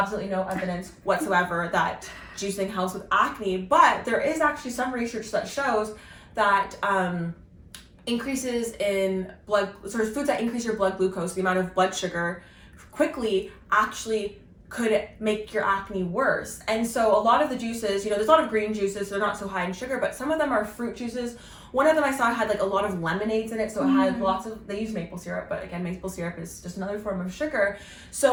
no evidence whatsoever that juicing helps with acne, but there is actually some research that shows that increases in foods that increase your blood glucose, the amount of blood sugar, quickly actually could make your acne worse. And so a lot of the juices, there's a lot of green juices, they're not so high in sugar, but some of them are fruit juices. One of them I saw had like a lot of lemonades in it, so it had they use maple syrup, but again, maple syrup is just another form of sugar.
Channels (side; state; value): both; identical; correlation 1.00